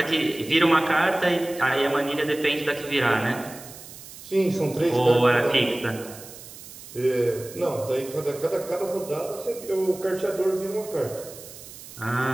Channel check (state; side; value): noise; right; hiss, 16 dB below the sound